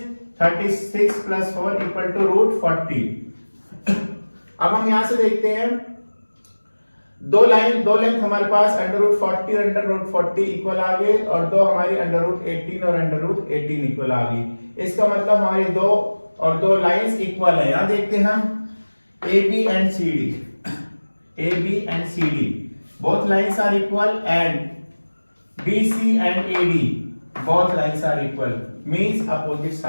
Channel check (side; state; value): both; inverted; correlation -1.00